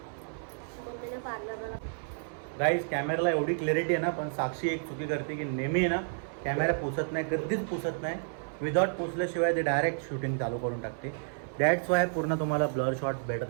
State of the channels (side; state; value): left; silent; 56 dB below the other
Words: मम्मीने पार्लरला. गाईज कॅमेराला एवढी क्लॅरिटी आहे ना पण साक्षी एक चुकी करते की नेहमी आहे ना कॅमेरा पुसत नाही. कधीच पुसत नाही. विदाउट पुसल्याशिवाय ते डायरेक्ट शूटिंग चालू करून टाकते. दॅट्स वाय पूर्ण तुम्हाला ब्लर शॉट